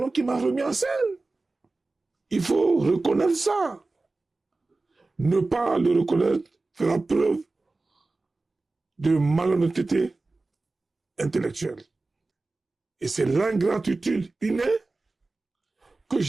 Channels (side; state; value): left; quieter; 3.4 dB